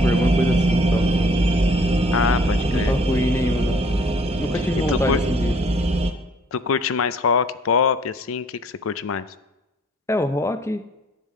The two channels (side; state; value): both; normal; correlation 0.58